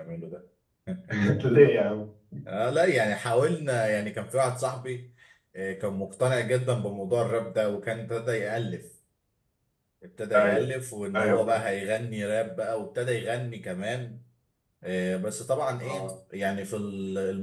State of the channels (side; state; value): both; identical; correlation 1.00